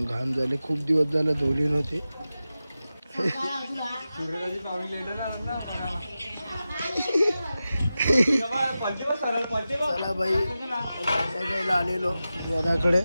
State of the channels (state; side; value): inverted; both; correlation -0.93